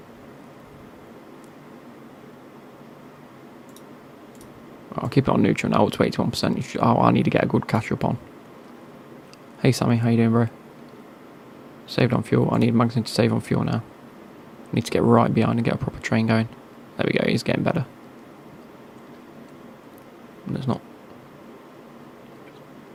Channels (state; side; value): identical; both; correlation 1.00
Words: I'll keep it on neutral now, up to 81%. Oh, I need to get a good catch up on. Hey Sammy, how you doing, bro? Saved on fuel. I need Magnussen to save on fuel now. Need to get right behind and get a proper train going. There we go, he's getting better. There's not.